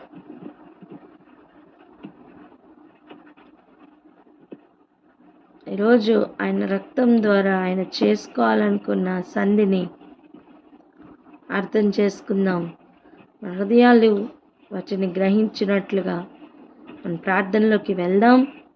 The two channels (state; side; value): identical; both; correlation 1.00